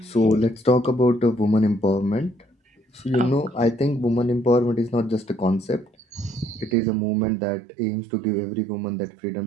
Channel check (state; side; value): drops out; left; at 6.8 s